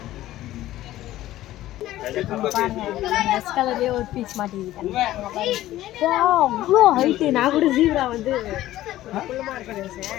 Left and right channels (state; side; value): quieter; right; 14.7 dB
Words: கலர்லேயே ஒரு பீஸ் மாட்டிக்கிட்டேன். அவ்வளோ ஹைட்டு. நான் கூட ஜீப்ரா வந்து